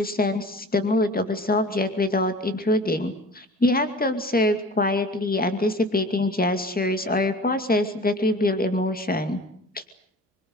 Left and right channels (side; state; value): both; normal; correlation 0.41